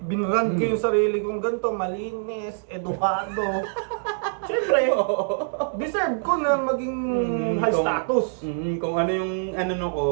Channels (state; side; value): silent; left; digital silence